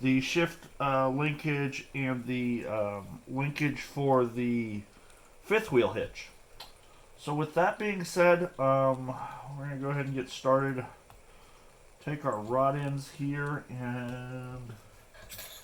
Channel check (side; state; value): both; identical; correlation 1.00